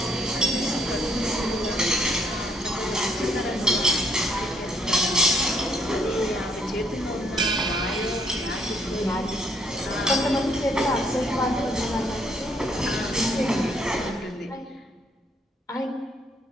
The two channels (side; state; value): both; normal; correlation 0.68